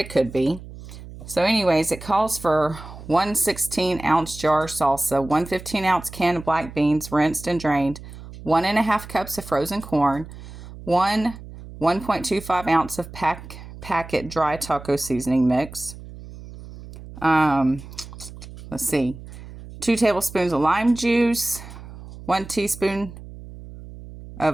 could be. So anyways, it calls for 1 16-ounce jar of salsa, 1 15-ounce can of black beans, rinsed and drained, 1.5 cups of frozen corn, 1.25 ounce of packet dry taco seasoning mix. Let's see, 2 tablespoons of lime juice, 1 teaspoon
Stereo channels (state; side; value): noise; right; hum, 15 dB below the sound